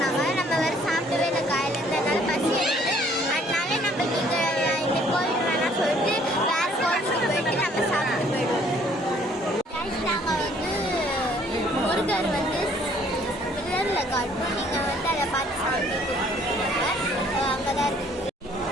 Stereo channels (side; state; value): both; normal; correlation 0.60